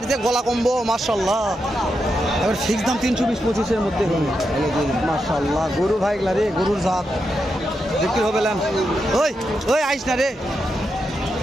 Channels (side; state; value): both; normal; correlation 0.85